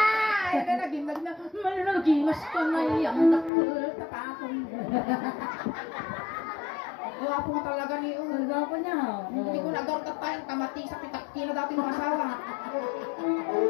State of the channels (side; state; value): right; drops out; at 3.5 s